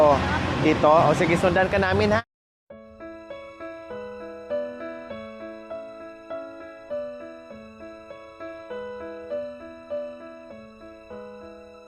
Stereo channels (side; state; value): both; identical; correlation 1.00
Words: Dito? O sige, sundan ka namin ha?